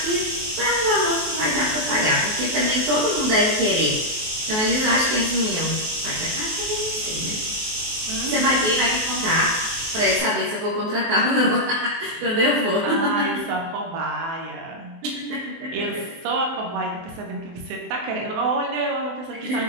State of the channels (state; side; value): late; left; 23 ms